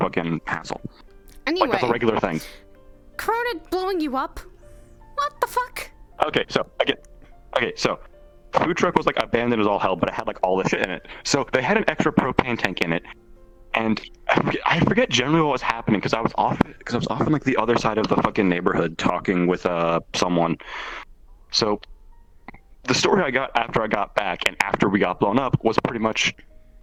hassle. Anyway. Like, that's a regular thing. Corona blowing you up? What the fuck? Okay, so food truck was like abandoned as all hell, but it had like all this shit in it. So they had an extra propane tank in it, and I forget generally what was happening because I was off on like the other side of the fucking neighborhood talking with someone. So the story I got after I got back and after we got blown up was pretty much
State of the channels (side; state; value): both; identical; correlation 1.00